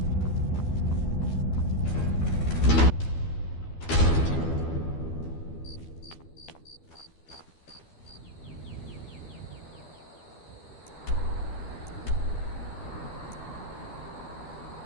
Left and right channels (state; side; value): late; right; 12 ms